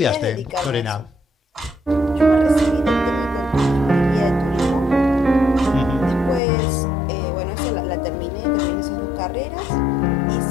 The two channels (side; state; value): right; drops out; at 6.4 s